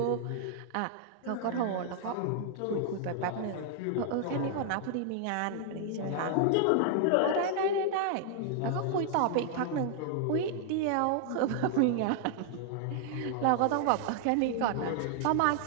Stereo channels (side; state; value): both; different; correlation -0.01